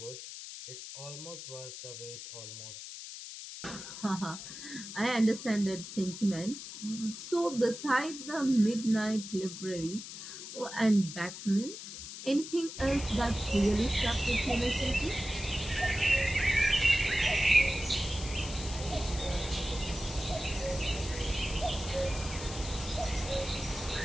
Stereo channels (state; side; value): noise; left; hiss, 10 dB below the sound